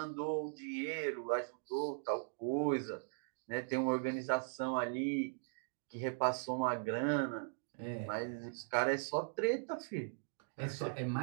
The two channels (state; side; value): silent; left; digital silence